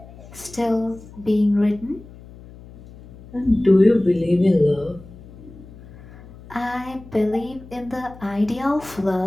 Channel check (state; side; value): noise; left; hum, 19 dB below the sound